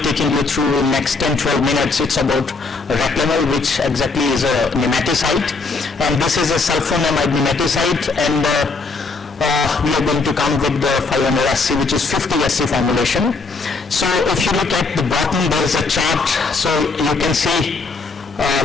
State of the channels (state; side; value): quieter; right; 4.1 dB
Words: taking you through in next 10-12 minutes, it's about Reclamel, which exactly is a nematicide, and this is a sulfonamide nematicide, and we are going to come with the 500 SC, which is 50 SC formulation. So if you look at the bottom, there is a chart, so you can see